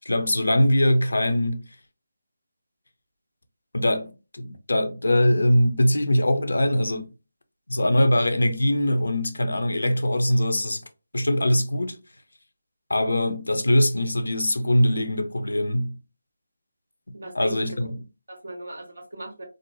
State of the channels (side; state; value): both; inverted; correlation -0.96